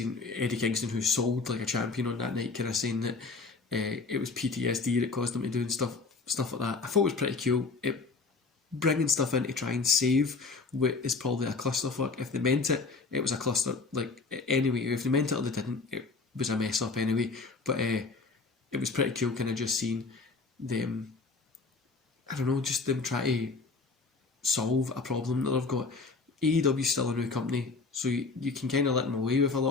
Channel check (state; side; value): quieter; right; 4.1 dB